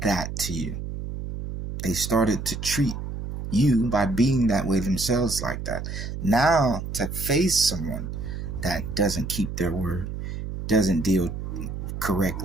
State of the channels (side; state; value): right; noise; hum, 6 dB below the sound